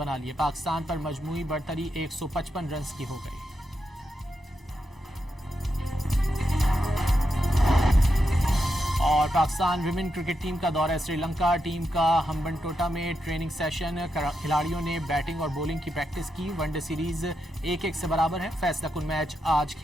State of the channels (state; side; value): normal; both; correlation 0.85